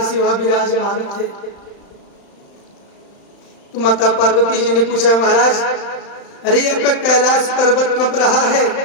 वहां विराजमान थे। तो माता पार्वती जी ने पूछा, महाराज अरे आपका कैलाश पर्वत कब रहा है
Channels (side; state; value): right; late; 35 ms